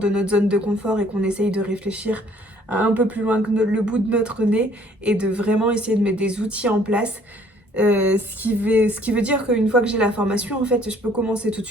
notre zone de confort et qu'on essaye de réfléchir à un peu plus loin que le bout de notre nez et de vraiment essayer de mettre des outils en place. Ce qui veut dire qu'une fois que j'ai la formation, en fait, je peux commencer tout de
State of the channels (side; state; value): both; normal; correlation 0.59